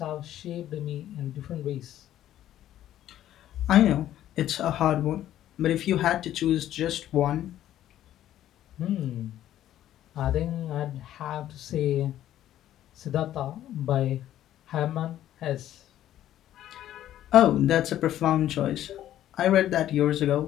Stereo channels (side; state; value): right; quieter; 12.3 dB